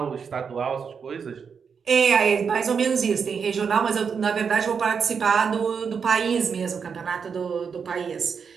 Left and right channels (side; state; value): left; quieter; 6.3 dB